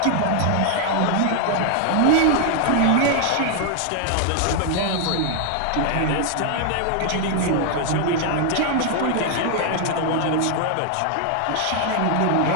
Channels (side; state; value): both; different; correlation 0.00